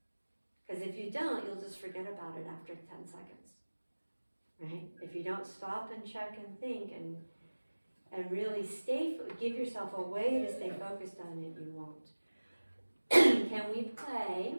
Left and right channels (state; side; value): inverted; both; correlation -1.00